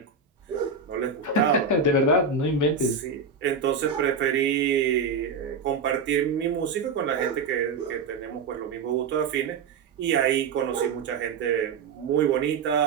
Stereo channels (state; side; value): quieter; left; 5.0 dB